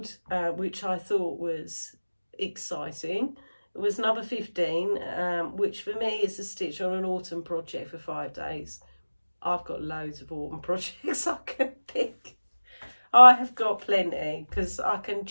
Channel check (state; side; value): inverted; both; correlation -1.00